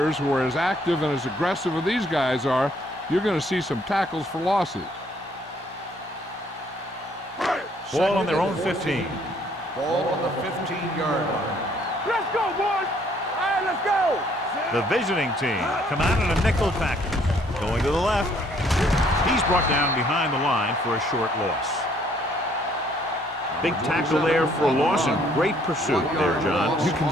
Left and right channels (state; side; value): normal; both; correlation 0.64